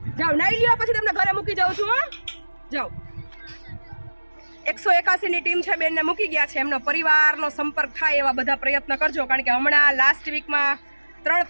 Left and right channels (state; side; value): inverted; both; correlation -1.00